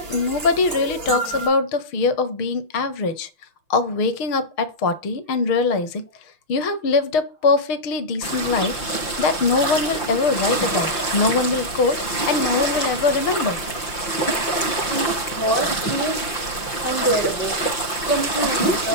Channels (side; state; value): right; late; 5.8 ms